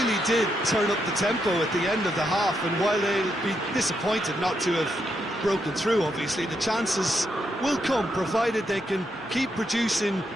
did turn up the tempo at the end of the half, and while they'll be disappointed not to have broken through, obviously, the chances will come, provided they can keep producing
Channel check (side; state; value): both; normal; correlation 0.80